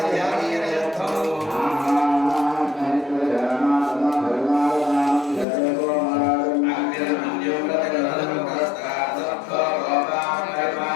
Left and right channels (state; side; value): drops out; right; at 5.5 s